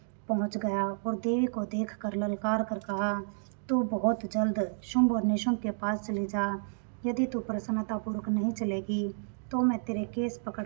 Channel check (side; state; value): left; silent; digital silence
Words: पहुंच गया और देवी को देखकर ललकार कर कहा, तू बहुत जल्द शुंभ और निशुंभ के पास चली जा। यदि तू प्रसन्नतापूर्वक नहीं चलेगी तो मैं तेरे केस